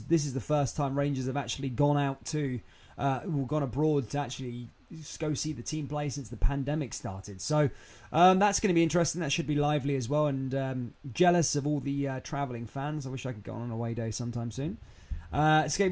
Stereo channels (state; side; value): identical; both; correlation 1.00